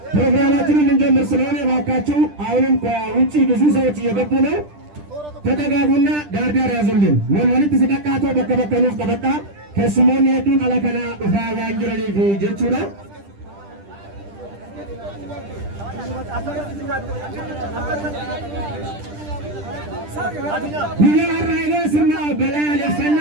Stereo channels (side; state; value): left; late; 10 ms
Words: ፕሮግራማችንን እንጀምር ስለሆነ እባካችሁ አሁንም ከውጪ ብዙ ሰዎች እየገቡ ነው። ተጠጋጉና ዳርዳር ያዙልን። ወልወልት ሲቀቃቶ በከበከኑፍ ቀበጣ ከስሞን ሄዱን አለከና ኡፋ ዋንጅረኒ ጀቹራ Biyyaa Raayyaa sirna balaa